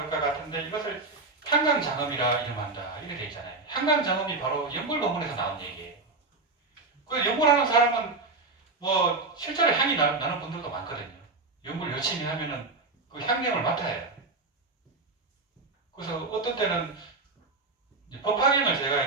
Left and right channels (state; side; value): quieter; left; 3.6 dB